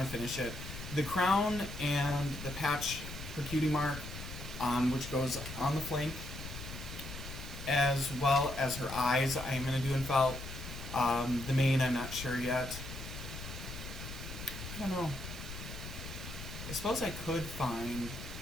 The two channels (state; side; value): noise; left; rumble, 10 dB below the sound